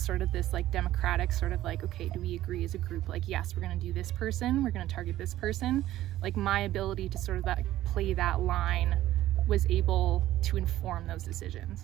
of this like democratic sort of like, okay, do we agree as a group, like yes, we're gonna do this person, we're gonna target this person, like my ability to sort of that play that line was able to inform those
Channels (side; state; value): left; quieter; 14.3 dB